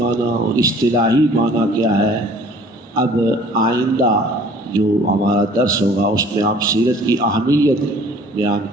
اور اصطلاحی معنی کیا ہے. اب آئندہ جو ہمارا درس ہوگا اس میں ہم سیرت کی اہمیت بیان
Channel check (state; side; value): normal; both; correlation 0.52